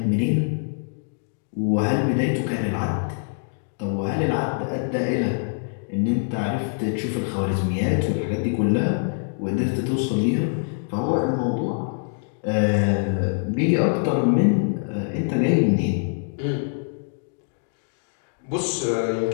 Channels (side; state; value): right; silent; digital silence